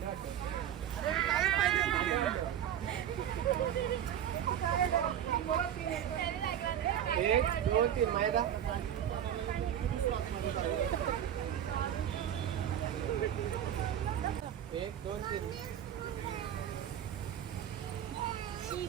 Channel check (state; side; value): quieter; left; 10.2 dB